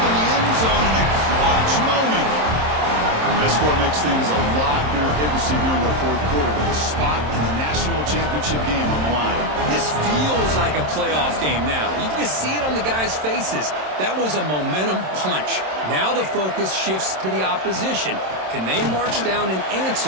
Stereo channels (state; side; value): late; left; 27 ms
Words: in the end zone in a clutch moment. That score makes things a lot more interesting here in the 4th quarter with a spot in the national championship game on the line. This feels like a playoff game now. You can just see it on the guys' faces. That was a momentum punch. Now the focus shifts to the opposition. Can they march down and